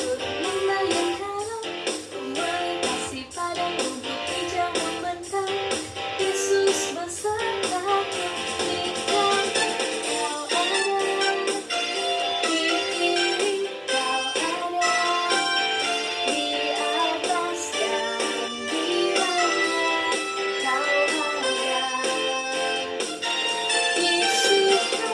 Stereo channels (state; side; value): identical; both; correlation 1.00